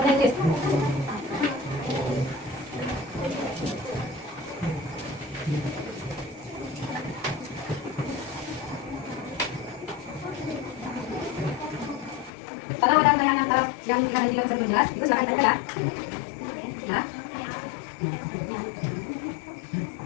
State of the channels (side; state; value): right; drops out; at 12.3 s